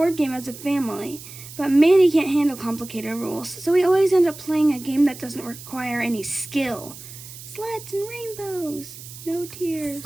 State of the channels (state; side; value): noise; right; hiss, 15 dB below the sound